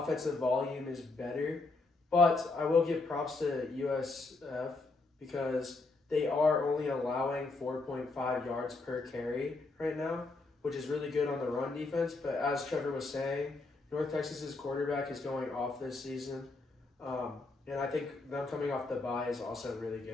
volume is better. But I will give props to USF because they are only allowing 4.5 yards per carry right now, which is really good on the run defense. But as Trevor was saying, North Texas's quarterback is going off this season. And I think them coming off the bye is also really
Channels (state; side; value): quieter; right; 3.5 dB